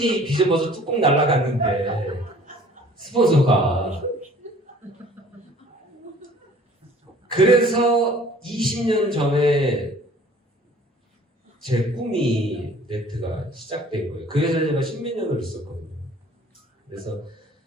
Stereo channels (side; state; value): both; normal; correlation 0.52